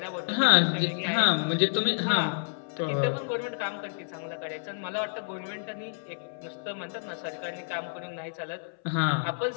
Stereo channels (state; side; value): silent; right; 58 dB below the other